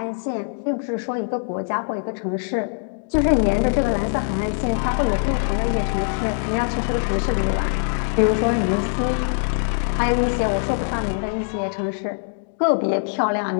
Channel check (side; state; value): right; silent; digital silence